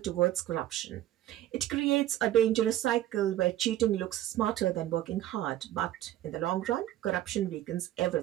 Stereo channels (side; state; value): left; quieter; 13.4 dB